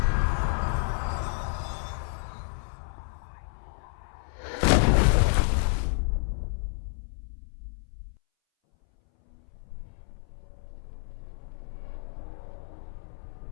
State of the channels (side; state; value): right; silent; 58 dB below the other